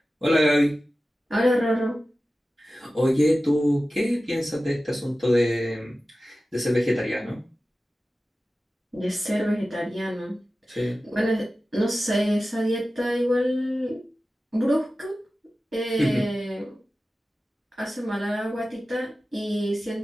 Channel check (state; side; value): normal; both; correlation 0.95